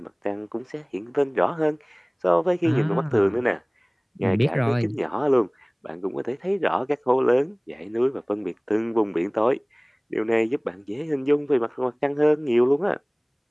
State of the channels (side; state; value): both; identical; correlation 1.00